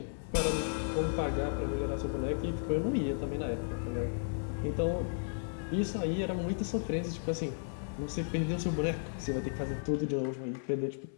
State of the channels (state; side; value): silent; right; digital silence